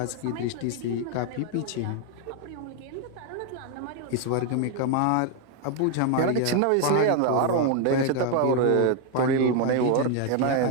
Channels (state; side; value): different; both; correlation 0.00